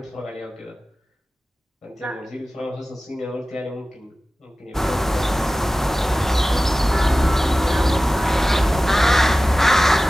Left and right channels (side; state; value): both; normal; correlation 0.96